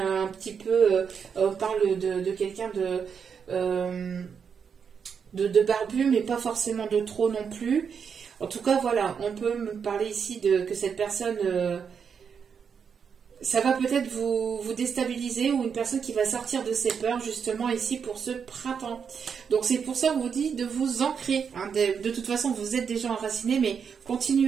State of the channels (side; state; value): left; quieter; 6.7 dB